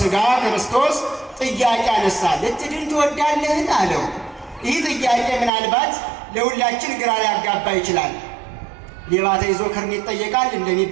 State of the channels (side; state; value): left; drops out; at 5.5 s